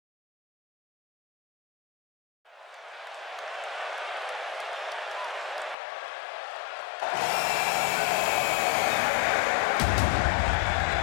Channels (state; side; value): drops out; right; at 5.8 s